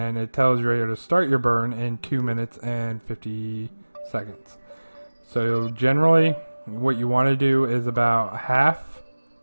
it tells you right here to start your burn in 2 minutes and 50 seconds. So generally what you want to do is about half,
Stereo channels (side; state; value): both; inverted; correlation -1.00